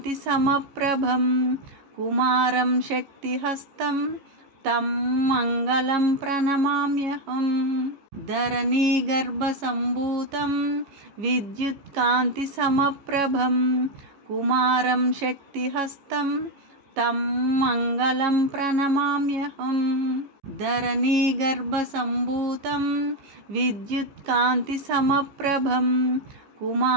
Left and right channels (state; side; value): late; left; 15 ms